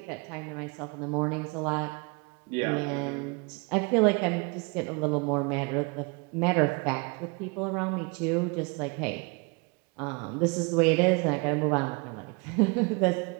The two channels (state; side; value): quieter; left; 30.4 dB